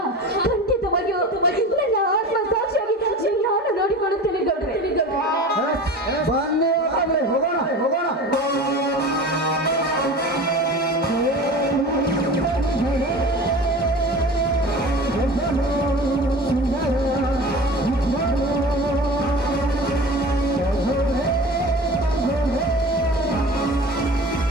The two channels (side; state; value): both; normal; correlation 0.36